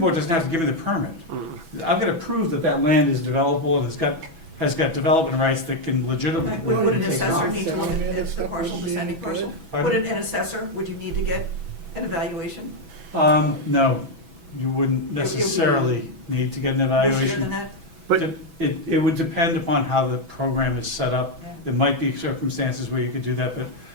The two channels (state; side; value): late; left; 6.1 ms